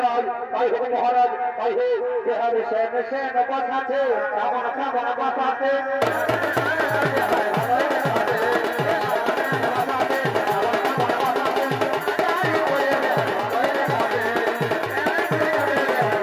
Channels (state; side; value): identical; both; correlation 1.00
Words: তাই হোক মহারাজ তাই হোক যেভাবে সেন বসাতে বসাতে